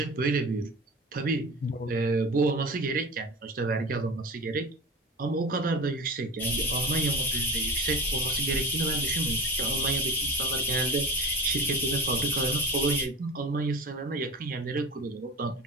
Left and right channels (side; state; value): both; normal; correlation 0.32